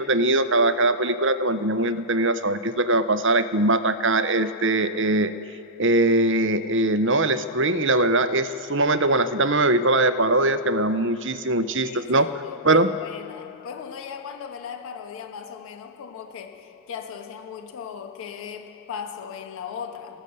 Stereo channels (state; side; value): normal; both; correlation -0.14